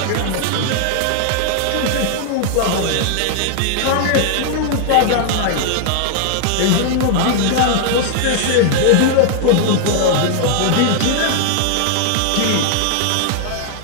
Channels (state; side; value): different; both; correlation 0.00